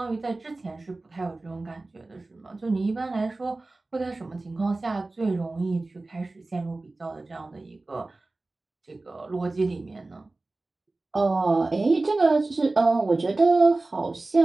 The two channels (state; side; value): quieter; left; 3.2 dB